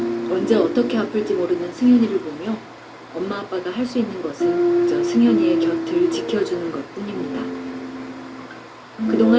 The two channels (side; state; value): both; identical; correlation 1.00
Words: 언제 어떻게 아플지 모르는 승현이를 보며 엄마 아빠가 할 수 있는 것은 그저 승현이의 곁을 지켜주는 것뿐입니다.